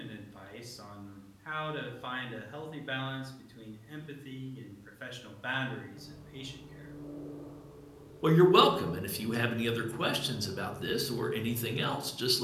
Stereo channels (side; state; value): both; identical; correlation 1.00